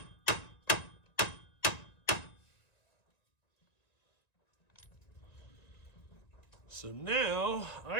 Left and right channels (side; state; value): right; late; 1.9 ms